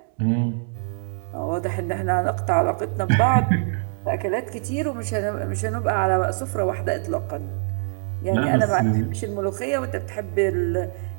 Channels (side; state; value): left; silent; digital silence